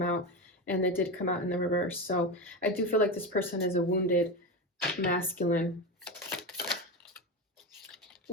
out, and it did come out in the reverse. So I do feel like this person is a wounded masculine.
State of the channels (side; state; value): both; normal; correlation 0.19